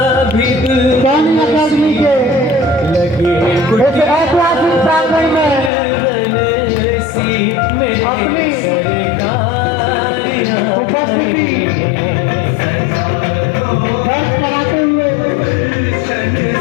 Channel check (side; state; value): right; drops out; at 5.7 s